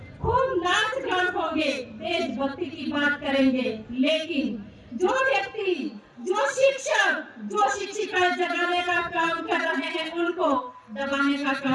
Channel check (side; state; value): both; identical; correlation 1.00